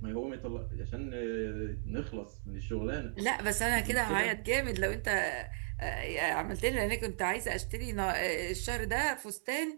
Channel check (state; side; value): silent; left; 54 dB below the other